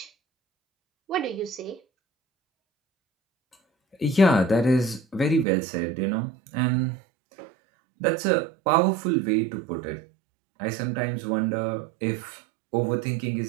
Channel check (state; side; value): drops out; left; at 5.5 s